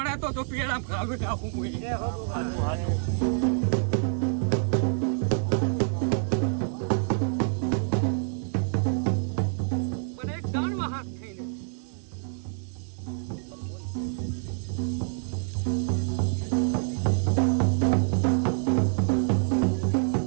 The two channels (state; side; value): silent; left; 60 dB below the other